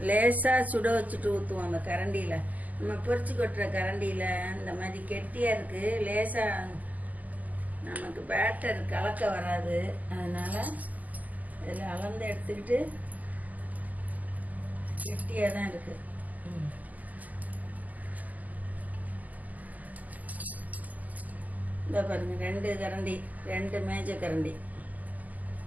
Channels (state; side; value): late; left; 0.079 ms